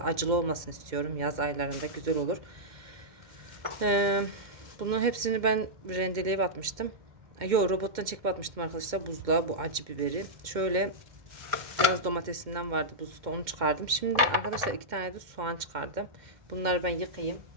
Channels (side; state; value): left; late; 2.1 ms